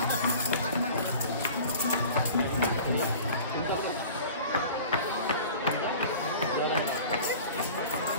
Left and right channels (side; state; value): both; inverted; correlation -0.42